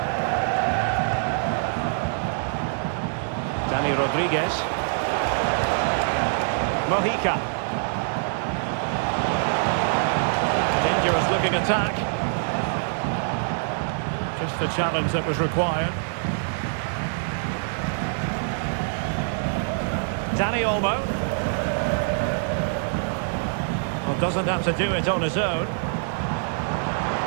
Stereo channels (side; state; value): left; silent; digital silence